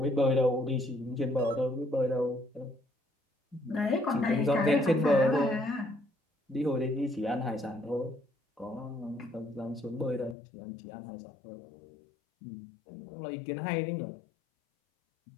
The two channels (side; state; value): right; drops out; at 10.4 s